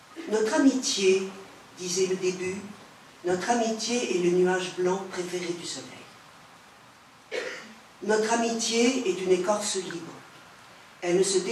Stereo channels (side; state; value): both; identical; correlation 1.00